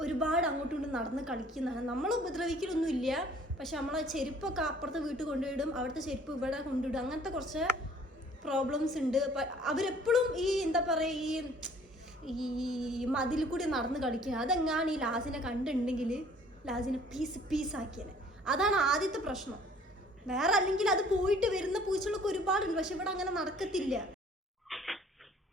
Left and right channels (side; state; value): both; normal; correlation 0.55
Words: ഒരുപാട് അങ്ങോട്ടും ഇങ്ങോട്ടും നടന്ന് കളിക്കുന്നതാണ്. നമ്മൾ ഉപദ്രവിക്കലൊന്നും ഇല്ല. പക്ഷെ നമ്മളെ ചെരുപ്പൊക്കെ അപ്പുറത്തെ വീട്ടിൽ കൊണ്ടുവിടും, അവിടുത്തെ ചെരുപ്പ് ഇവിടെ കൊണ്ടുവിടും. അങ്ങനത്തെ കുറച്ച് പ്രോബ്ലംസ് ഉണ്ട്. അവരെപ്പോഴും ഈ എന്താ പറയുക, ഈ മതിൽ കൂടി നടന്ന് കളിക്കുക. അതെങ്ങാണ് ഈ ലാസിനെ കണ്ടിട്ടുണ്ടെങ്കിൽ ലാസിനെ പീസാക്കിയത്. അതാണ് ആദ്യത്തെ പ്രശ്നം. വേറെ അല്ലെങ്കിൽ അത് പോയിട്ട് വരുന്ന പൂച്ചകളൊക്കെ ഒരുപാടുണ്ട്. പക്ഷെ ഇവിടെ അങ്ങനെ നടക്കത്തില്ല.